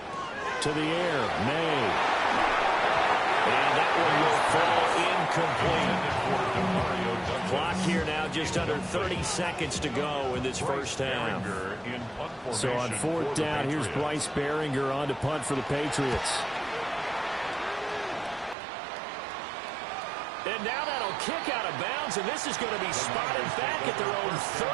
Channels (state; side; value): drops out; left; at 18.6 s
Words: To the air, May. And that one will fall incomplete. Clock here now just under 30 seconds to go in this first half. So on fourth down, here's Bryce Baringer on to punt for the Patriots. And now that'll kick out of bounds, and this is going to be spotted back at their own 30.